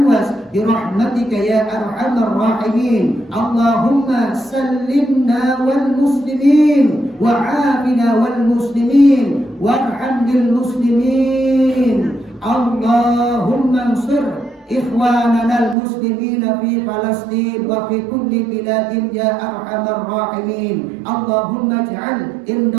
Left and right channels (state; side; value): drops out; left; at 15.8 s